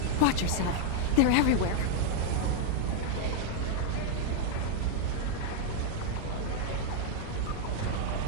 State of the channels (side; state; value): both; different; correlation 0.00